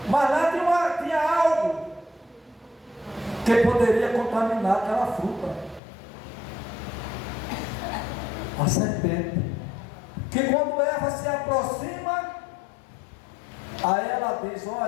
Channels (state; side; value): drops out; right; at 5.8 s